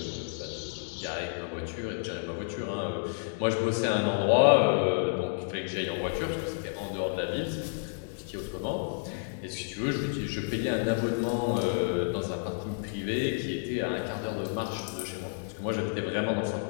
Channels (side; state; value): right; silent; digital silence